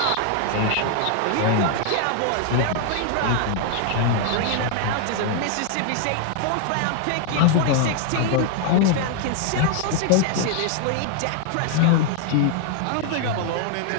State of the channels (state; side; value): different; both; correlation 0.00